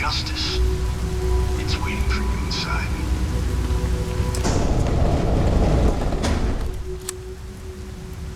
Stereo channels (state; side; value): identical; both; correlation 1.00